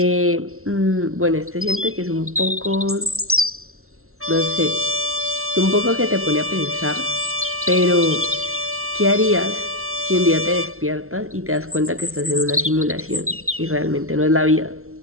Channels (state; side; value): late; left; 0.62 ms